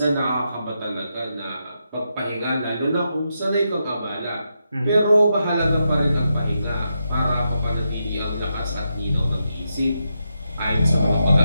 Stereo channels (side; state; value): both; inverted; correlation -0.85